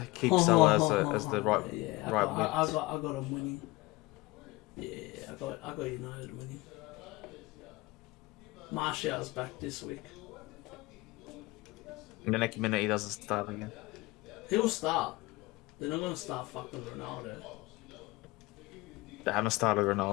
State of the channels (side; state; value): right; quieter; 21.5 dB